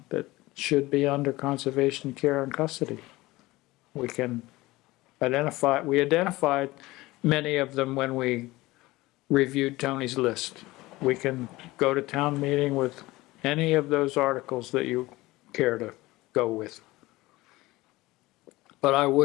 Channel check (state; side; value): quieter; right; 19.6 dB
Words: that should be under conservation care and custody. We identified many of them when we reviewed Tony's list. We can go to town meeting with any of those articles that you care to go with. But I